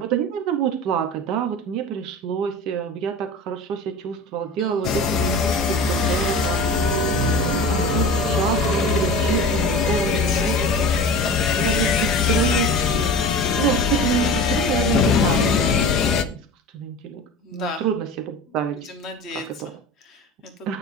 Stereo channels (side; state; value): both; normal; correlation 0.34